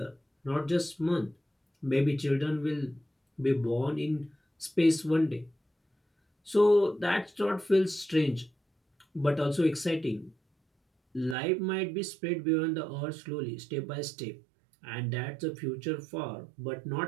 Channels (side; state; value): left; drops out; at 11.4 s